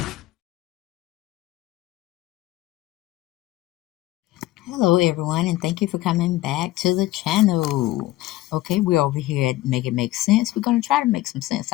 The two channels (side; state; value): right; quieter; 16.8 dB